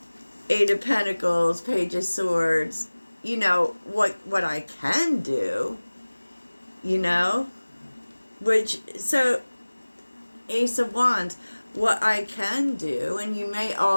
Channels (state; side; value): inverted; both; correlation -1.00